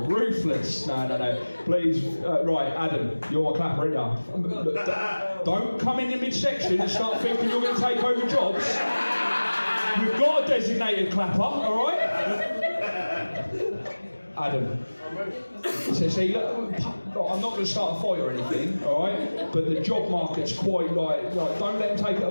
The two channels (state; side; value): inverted; both; correlation -1.00